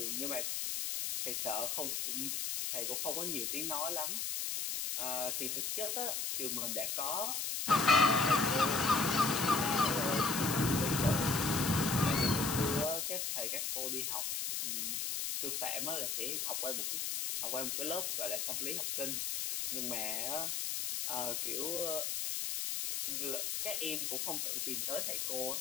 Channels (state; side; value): noise; left; hiss, 1 dB below the sound